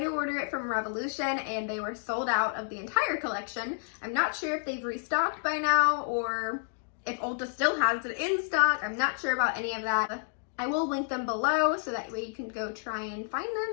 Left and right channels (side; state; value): right; silent; digital silence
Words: order it from Revolution and they were sold out of the entire collection. I'm not sure if they've restocked by now or if Ulta still has it in stock. I'm not sure about any of that. I will link them below so that way you can go try and find